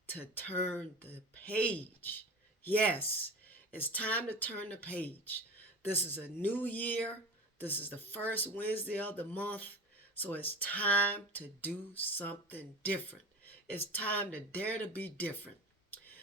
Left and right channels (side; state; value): both; normal; correlation 0.31